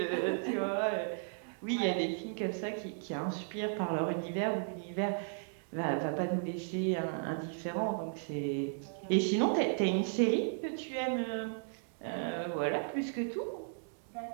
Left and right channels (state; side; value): silent; left; digital silence